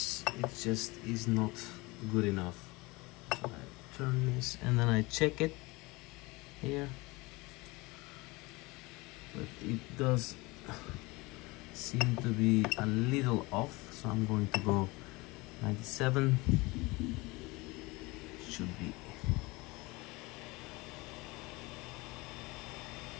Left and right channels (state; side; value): quieter; right; 23.8 dB